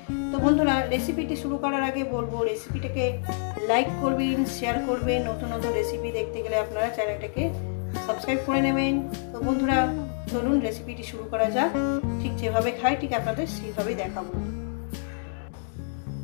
তো বন্ধুরা রেসিপিটি শুরু করার আগে বলবো রেসিপিটাকে লাইক করবেন, শেয়ার করবেন। নতুন নতুন রেসিপি দেখতে গেলে আপনারা চ্যানেলটাকে সাবস্ক্রাইব করে নেবেন। তো বন্ধুরা চলুন রেসিপিটি শুরু করা যাক। ঠিক যেভাবে খাই ঠিক আপনাদের সেইভাবে দেখাবো।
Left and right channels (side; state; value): right; silent; digital silence